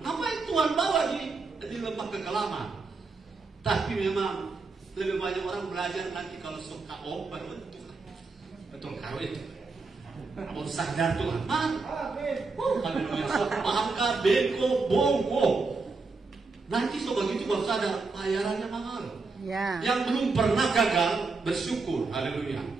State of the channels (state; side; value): quieter; left; 4.1 dB